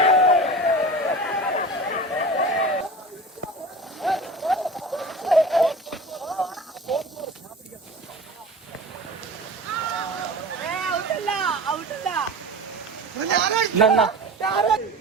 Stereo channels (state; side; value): normal; both; correlation 0.35